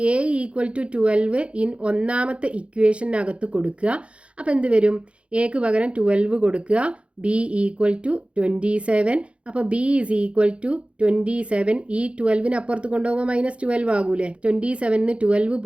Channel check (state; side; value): late; left; 0.060 ms